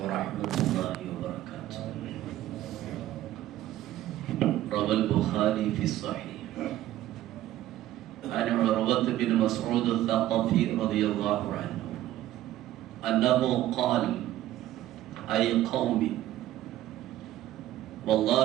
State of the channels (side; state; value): left; quieter; 14.0 dB